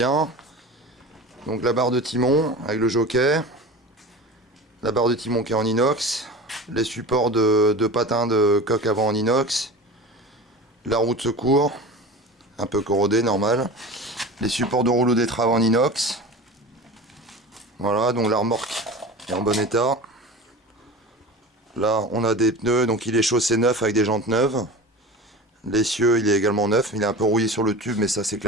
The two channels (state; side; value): normal; both; correlation 0.33